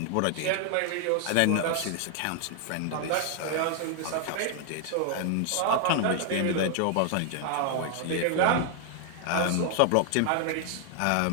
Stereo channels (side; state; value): both; different; correlation 0.00